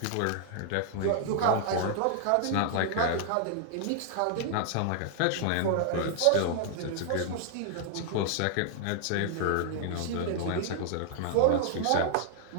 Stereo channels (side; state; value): both; different; correlation 0.00